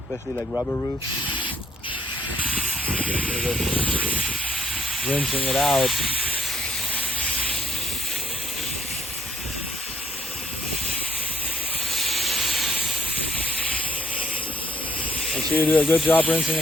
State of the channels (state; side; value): normal; both; correlation 0.65